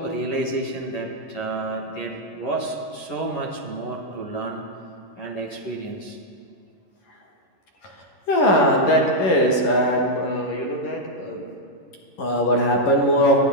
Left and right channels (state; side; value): late; right; 11 ms